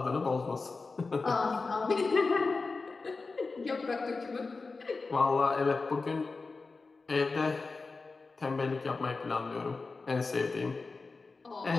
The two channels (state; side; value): quieter; right; 4.0 dB